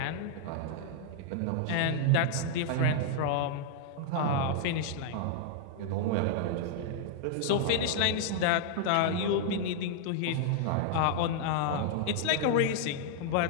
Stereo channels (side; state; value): both; different; correlation -0.01